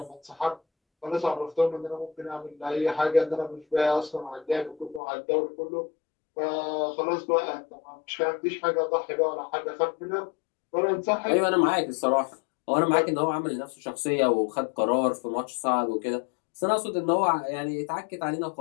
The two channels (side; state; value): right; drops out; at 5.0 s